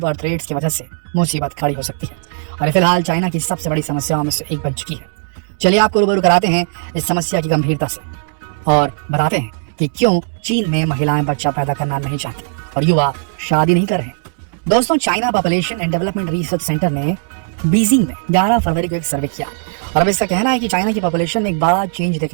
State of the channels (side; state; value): left; silent; digital silence